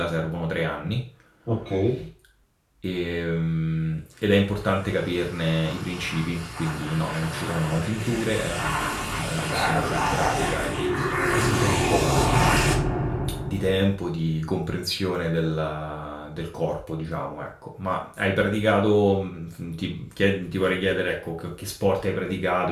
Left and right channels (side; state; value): both; identical; correlation 1.00